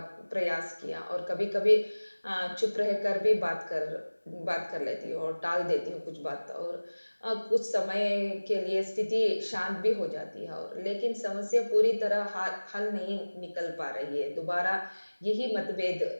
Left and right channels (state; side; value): inverted; both; correlation -1.00